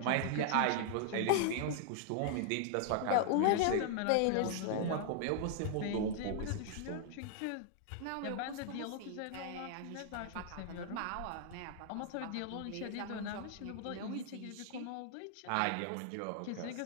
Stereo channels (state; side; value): different; both; correlation 0.00